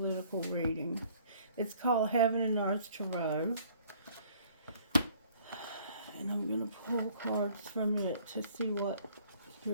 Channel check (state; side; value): inverted; both; correlation -0.58